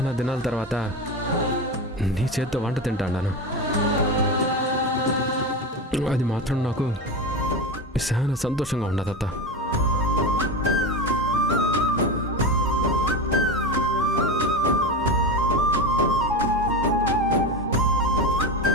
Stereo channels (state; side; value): normal; both; correlation 0.22